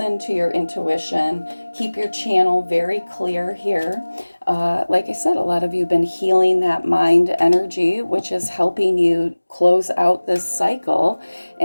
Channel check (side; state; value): both; inverted; correlation -1.00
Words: to your intuition, keep your channel very clear here. Like I said, a lot of you have been healing that mind energy, which is helping you close out this cycle